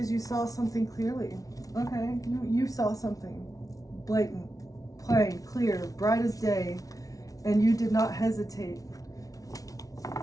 you saw something clearly. Okay, you saw something blatant, plain, clear, bright as day, and you did not hesitate.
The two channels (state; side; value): late; right; 0.18 ms